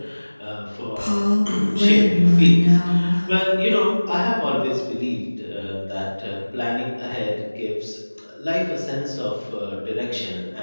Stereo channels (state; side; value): inverted; both; correlation -1.00